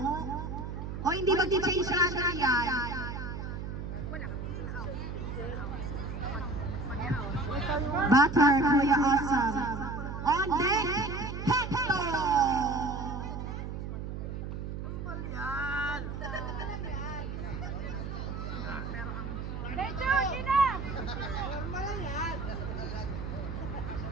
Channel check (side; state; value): right; noise; hum, 6 dB below the sound